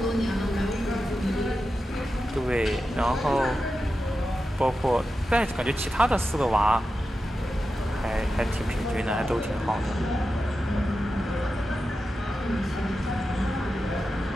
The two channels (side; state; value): both; normal; correlation 0.91